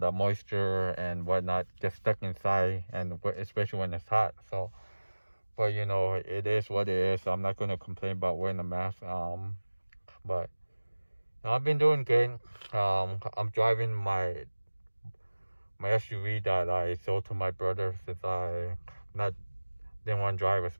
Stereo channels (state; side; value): inverted; both; correlation -1.00